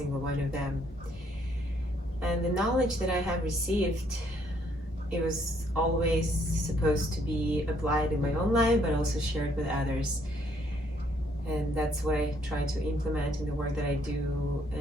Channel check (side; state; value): both; normal; correlation 0.68